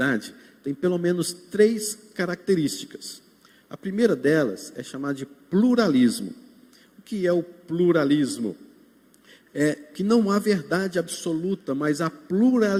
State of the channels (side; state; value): both; identical; correlation 1.00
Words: tem pelo menos 3 características. A primeira delas é chamada de pluralismo. O que é o pluralismo? É que não há verdade absoluta, mas há